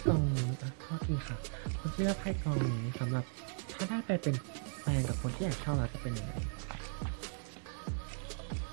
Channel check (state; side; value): silent; left; 53 dB below the other